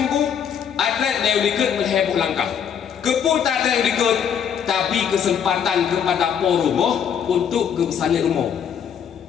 atlet dia ikut mengheboh langkah. Keputar dia ikut tapi kesempatan kepada rumah untuk ke sana rumah.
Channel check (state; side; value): quieter; right; 8.1 dB